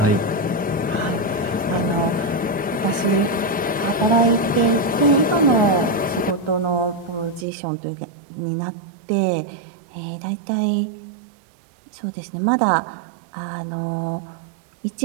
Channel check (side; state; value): left; drops out; at 7.5 s